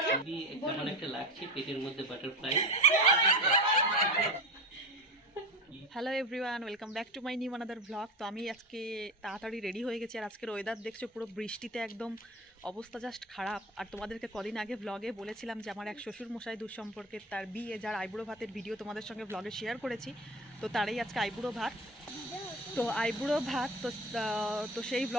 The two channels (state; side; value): normal; both; correlation 0.27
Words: কেমন একটা লাগছে পেটের মধ্যে butterfly. Hello everyone, welcome back to my new another blog. তো আমি আজকে তাড়াতাড়ি রেডি হয়ে গেছি। আর আজকের ওয়েদার দেখছো পুরো বৃষ্টিতে একদম অবস্থা জাস্ট খারাপ। আর তোমাদেরকে কদিন আগে ব্লগে বলেছিলাম যে আমার এক শ্বশুর মশাই দূর সম্পর্কে তার বিয়ে, যার আইবুড়ো ভাতের ভিডিও তোমাদের সঙ্গে ব্লগে শেয়ার করেছি। তো তারই আজকে আইবুড়ো ভাত। আইবুড়ো ভাত তো সেই